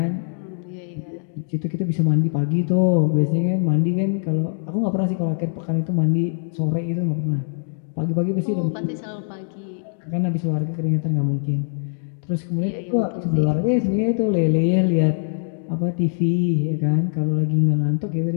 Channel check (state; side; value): silent; right; digital silence